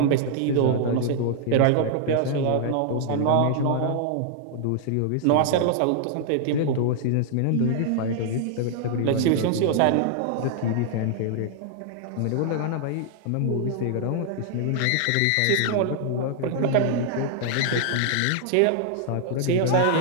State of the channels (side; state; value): both; different; correlation 0.00